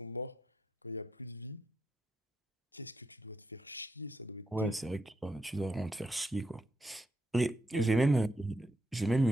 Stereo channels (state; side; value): normal; both; correlation 0.82